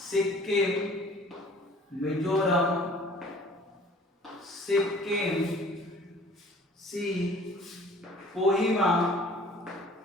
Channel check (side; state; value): both; normal; correlation 0.50